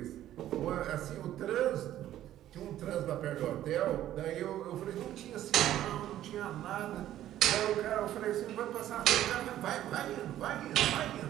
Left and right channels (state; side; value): quieter; left; 12.7 dB